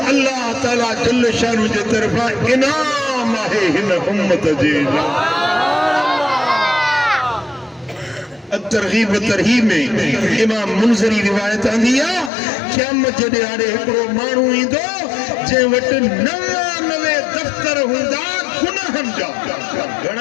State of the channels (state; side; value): drops out; right; at 12.3 s